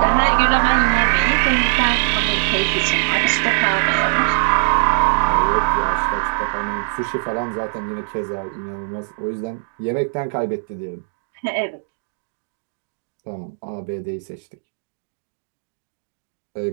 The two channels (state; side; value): silent; left; digital silence